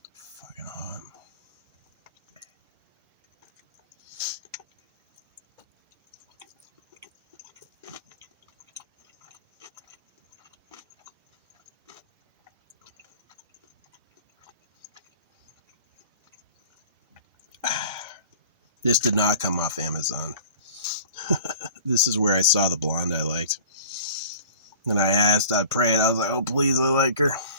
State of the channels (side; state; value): both; inverted; correlation -0.44